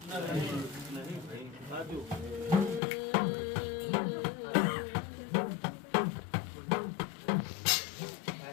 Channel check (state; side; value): drops out; right; at 2.8 s